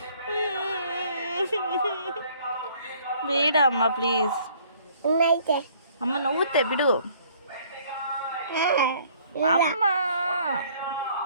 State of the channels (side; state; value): both; inverted; correlation -0.59